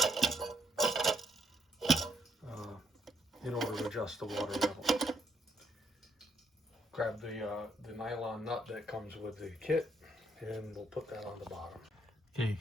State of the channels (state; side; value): normal; both; correlation 0.71